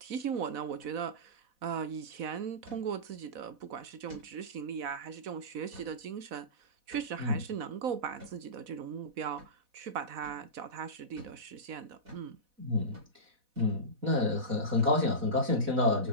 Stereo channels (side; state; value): left; late; 4.1 ms